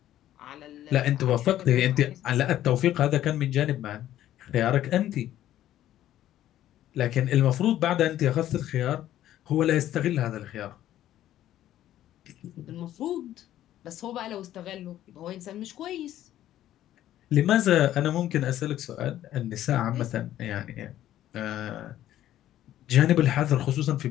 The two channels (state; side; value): quieter; right; 12.7 dB